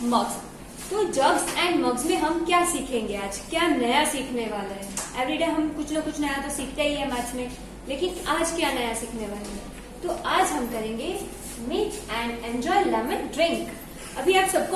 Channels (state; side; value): identical; both; correlation 1.00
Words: mugs. तो jugs and mugs में हम क्या सीखेंगे आज, क्या नया सीखने वाले हैं। एवरीडे हम कुछ ना कुछ नया तो सीखते ही है मैथ्स में, लेकिन आज क्या नया सीखने वाले हैं। तो आज हम करेंगे make and enjoy lemon drink. अभी आप